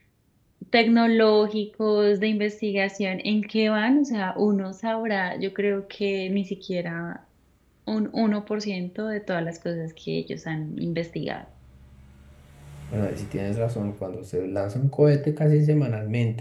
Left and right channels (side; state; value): both; identical; correlation 1.00